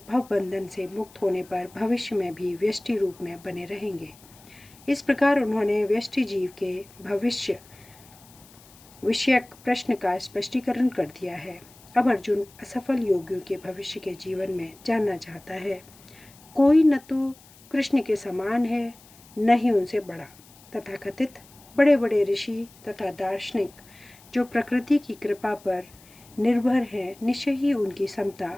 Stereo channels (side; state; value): left; noise; hiss, 25 dB below the sound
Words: भवबंधन से मुक्त होने पर भविष्य में भी व्यष्टि रूप में बने रहेंगे। इस प्रकार उन्होंने व्यष्टि जीव के भविष्य विषयक प्रश्न का स्पष्टीकरण कर दिया है। अब अर्जुन असफल योगियों के भविष्य के जीवन में जानना चाहता है। कोई न तो कृष्ण के समान है, न ही उनसे बड़ा। तथाकथित बड़े बड़े ऋषि तथा दार्शनिक जो प्रकृति की कृपा पर निर्भर हैं, निश्चय ही उनकी